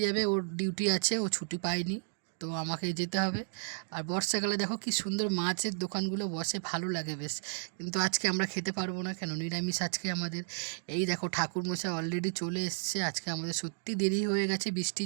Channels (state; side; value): silent; left; digital silence